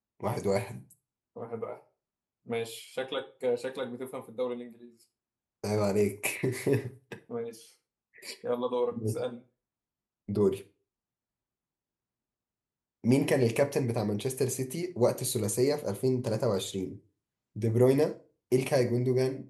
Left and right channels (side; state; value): both; identical; correlation 1.00